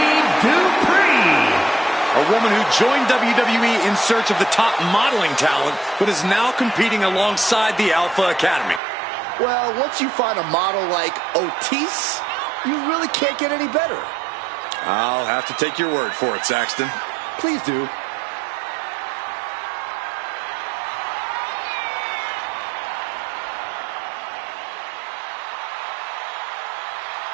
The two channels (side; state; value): left; drops out; at 8.8 s